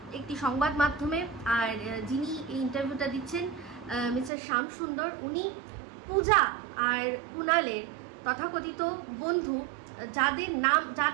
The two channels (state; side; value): drops out; left; at 4.3 s